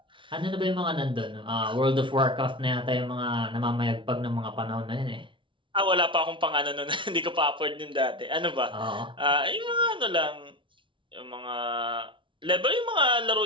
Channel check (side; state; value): left; late; 0.24 ms